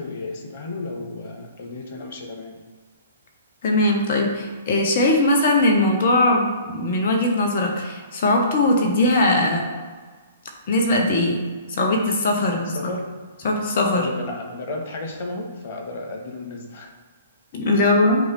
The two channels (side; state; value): both; inverted; correlation -0.46